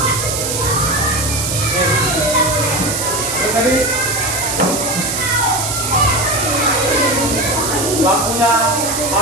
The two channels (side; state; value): right; noise; hiss, 2 dB below the sound